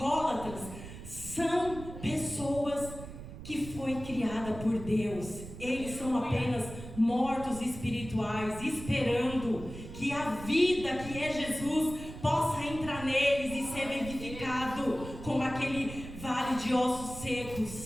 são pessoas que foi criada por Deus. Eles são apenas mortos espirituais, esperando que a vida que é Jesus possa entrar neles e ser vivificado como aquele vale de ossos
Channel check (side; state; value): right; noise; rumble, 12 dB below the sound